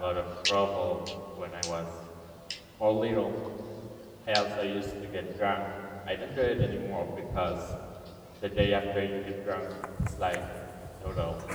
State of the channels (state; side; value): identical; both; correlation 1.00